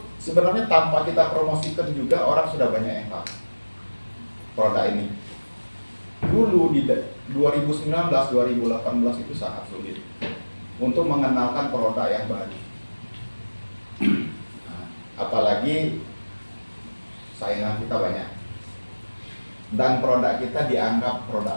sebenarnya tanpa kita promosikan juga orang sudah banyak yang tahu produk ini. Dulu di 2019, 2018 itu sangat sulit untuk mengenalkan produk yang baru. Nah, apalagi saingan kita banyak dan produk kita dianggap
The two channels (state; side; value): inverted; both; correlation -1.00